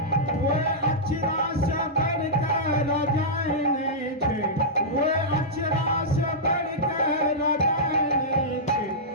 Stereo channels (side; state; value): both; normal; correlation -0.12